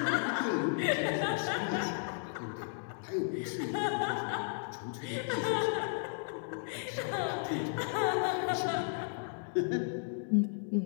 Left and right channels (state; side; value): silent; right; digital silence